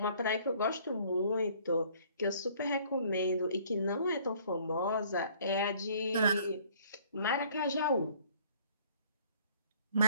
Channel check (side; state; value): both; inverted; correlation -0.57